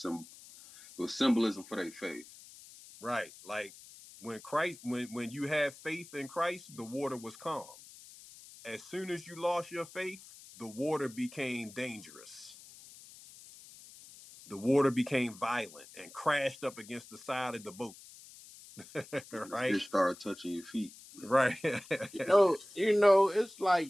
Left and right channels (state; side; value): noise; left; hiss, 19 dB below the sound